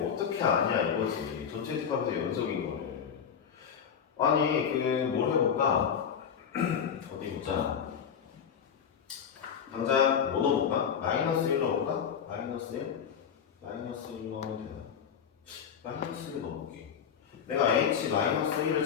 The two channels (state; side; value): quieter; right; 7.6 dB